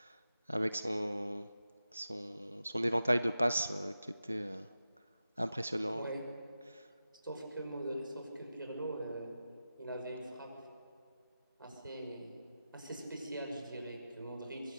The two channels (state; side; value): inverted; both; correlation -0.92